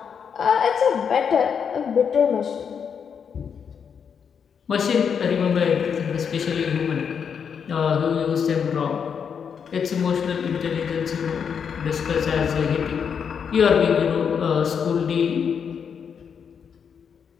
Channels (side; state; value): right; quieter; 7.0 dB